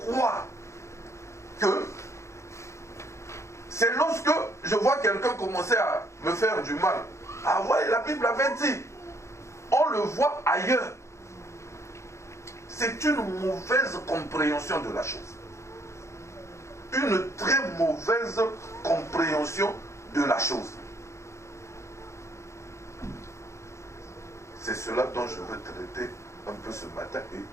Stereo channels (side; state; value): right; late; 0.14 ms